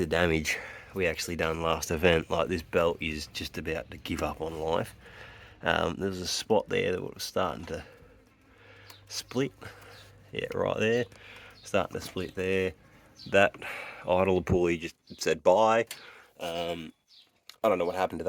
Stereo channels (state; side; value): identical; both; correlation 1.00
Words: damage we actually done last event. Like, this belt is just about to give up on life. There was a spot there that was starting to split. Yeah, right there. Starting to split there. That idler pulley just said bye. I don't know what happened to